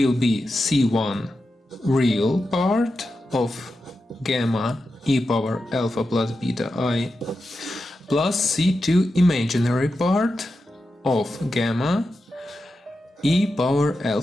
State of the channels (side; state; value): both; normal; correlation 0.90